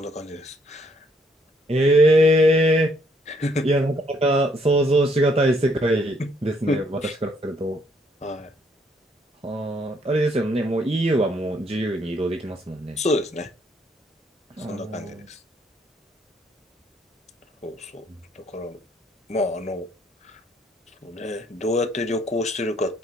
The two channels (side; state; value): both; normal; correlation 0.69